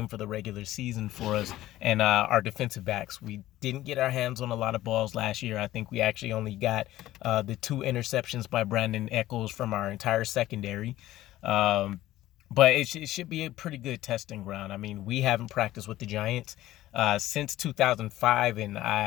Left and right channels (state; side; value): quieter; right; 15.1 dB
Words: for the regular season for us and our defensive backs. We didn't get our hands on a lot of balls last year. I think we actually only got the 2 interceptions by Brandon Echols from our entire secondary. But it should be a pretty good testing ground. I mean, we haven't practiced with the Giants since 2005, and